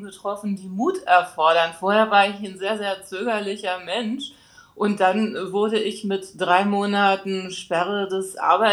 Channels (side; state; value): both; identical; correlation 1.00